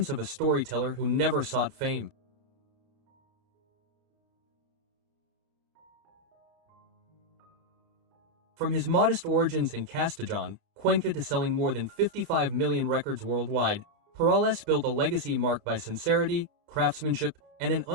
of a storyteller who never sought fame. From his modest origins in Castellón, Cuenca to selling more than 55 million records worldwide, Perales built a legacy marked by sincerity, craftsmanship, and an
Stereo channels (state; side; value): late; left; 31 ms